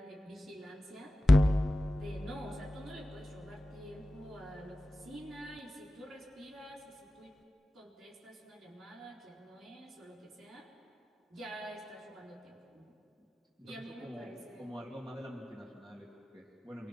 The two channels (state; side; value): normal; both; correlation 0.95